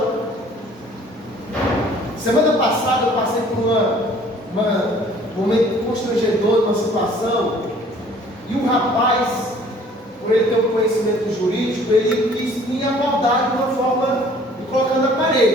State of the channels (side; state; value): both; normal; correlation 0.54